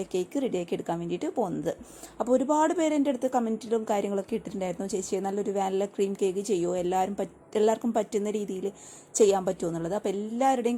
ഈ കേക്ക് റെഡിയാക്കി എടുക്കാൻ വേണ്ടിയിട്ട് പോകുന്നത്. അപ്പോൾ ഒരുപാട് പേര് എൻ്റെ അടുത്ത് കമൻറ്റിലും കാര്യങ്ങളൊക്കെ ഇട്ടിട്ടുണ്ടായിരുന്നു, ചേച്ചി നല്ലൊരു വാനില ക്രീം കേക്ക് ചെയ്യുമോ, എല്ലാവർക്കും പറ്റുന്ന രീതിയിൽ ചെയ്യാൻ പറ്റുമോ എന്നുള്ളത്. അപ്പോൾ എല്ലാവരുടെയും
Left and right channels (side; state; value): both; identical; correlation 1.00